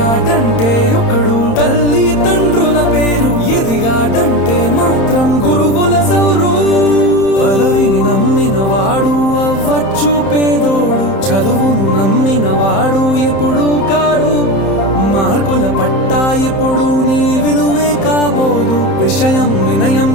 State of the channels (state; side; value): late; right; 31 ms